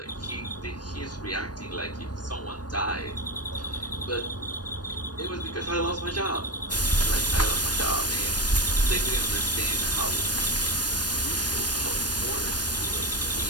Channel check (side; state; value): right; late; 0.69 ms